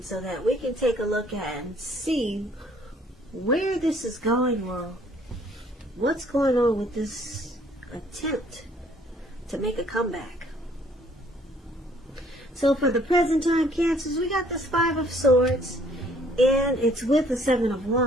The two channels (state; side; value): normal; both; correlation 0.61